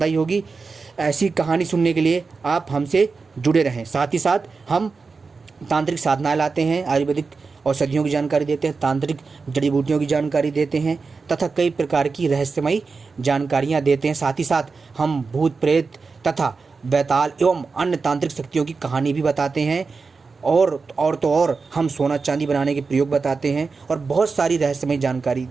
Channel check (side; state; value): left; quieter; 4.5 dB